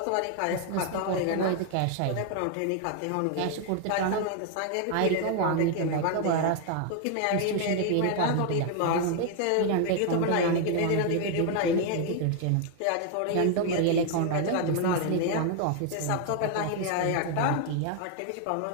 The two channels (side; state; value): both; different; correlation 0.00